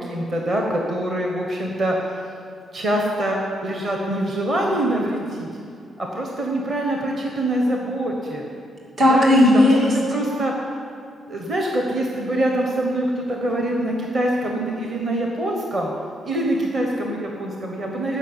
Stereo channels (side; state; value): both; normal; correlation 0.74